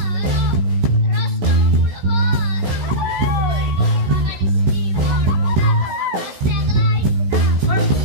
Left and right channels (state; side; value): late; left; 16 ms